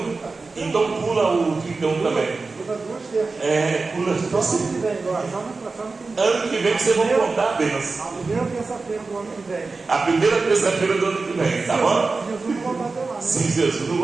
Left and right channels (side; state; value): left; quieter; 4.0 dB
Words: Então pula o 31 também. Pula. Ano que vem vocês vão contar a bênção. A primeira terça-feira do ano que vem. A primeira terça-feira do ano que vem, tá bom? Jesus não voltar até lá, né? Se Jesus não